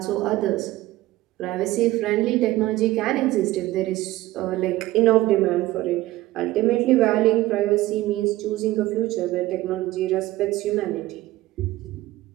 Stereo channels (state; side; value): quieter; left; 16.9 dB